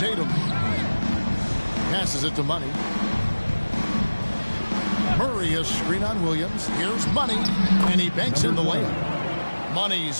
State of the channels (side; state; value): both; inverted; correlation -1.00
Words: Passes it to Money. Murray a screen on Williams. Here's Money, and he banks in the lane.